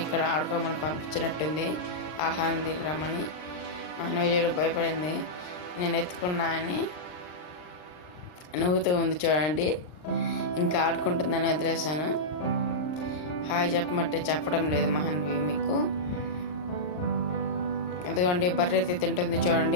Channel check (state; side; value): late; right; 39 ms